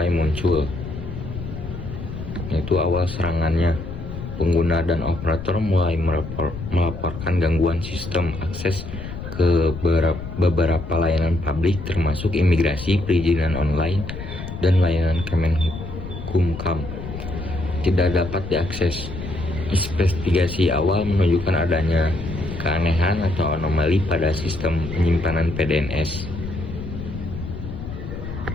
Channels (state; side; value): noise; left; rumble, 9 dB below the sound